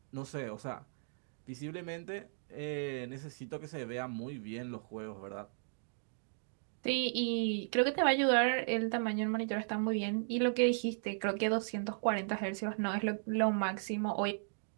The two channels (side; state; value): left; silent; digital silence